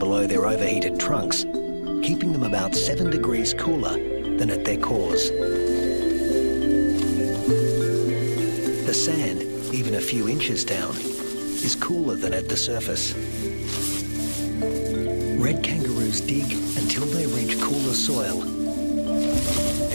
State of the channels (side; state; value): both; inverted; correlation -1.00